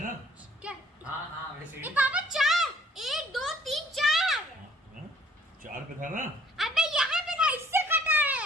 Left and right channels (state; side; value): normal; both; correlation 0.59